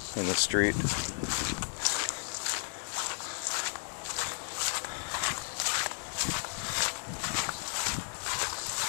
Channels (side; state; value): right; silent; digital silence